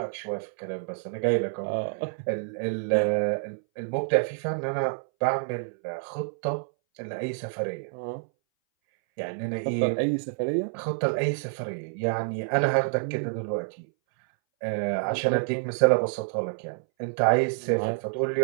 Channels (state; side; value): silent; left; 59 dB below the other